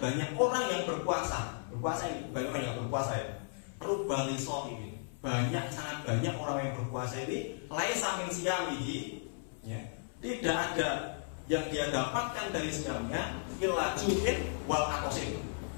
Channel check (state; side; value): silent; right; 54 dB below the other